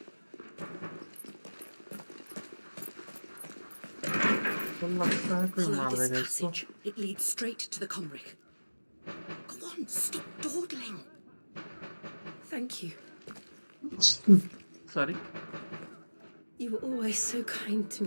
Follow this passage. It leads straight to the Comric. Go on, stop dawdling. Thank you. Sorry. You were always so kind to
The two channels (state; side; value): inverted; both; correlation -1.00